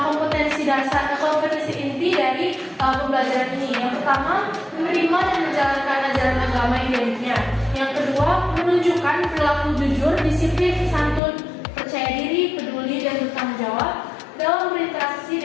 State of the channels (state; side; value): drops out; right; at 11.2 s